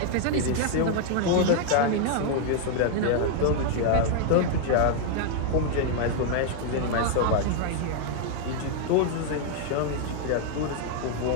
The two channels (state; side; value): different; both; correlation 0.00